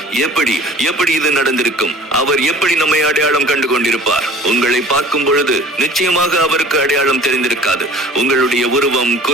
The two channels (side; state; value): both; normal; correlation 0.46